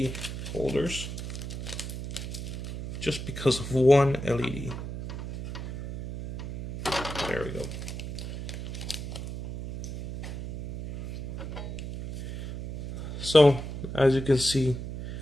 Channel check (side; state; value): right; noise; hum, 7 dB below the sound